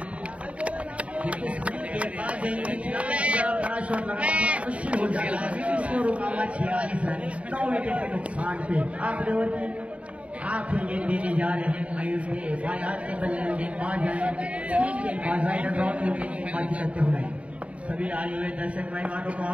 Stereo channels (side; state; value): left; late; 0.064 ms